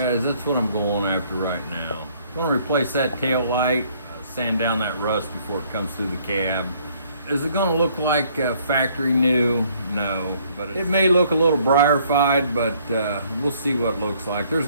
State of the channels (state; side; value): inverted; both; correlation -0.63